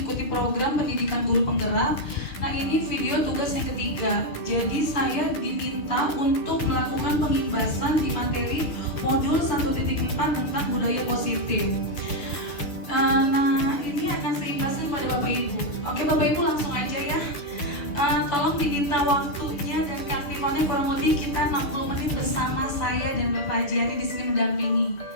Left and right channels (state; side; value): late; right; 6.6 ms